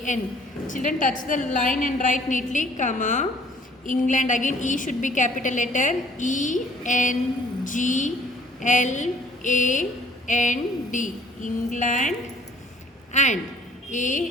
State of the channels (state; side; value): normal; both; correlation 0.56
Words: Children, touch the line and write neatly, comma. England, again E should be capital letter. E-N-G-L-A-N-D. England and